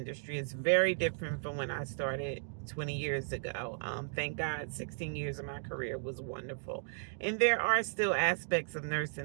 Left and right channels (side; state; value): left; silent; digital silence